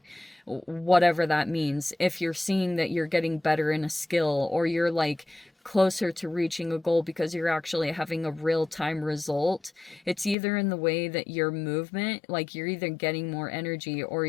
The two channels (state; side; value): drops out; right; at 10.4 s